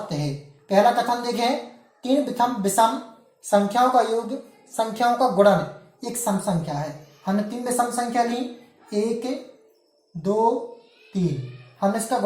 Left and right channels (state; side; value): identical; both; correlation 1.00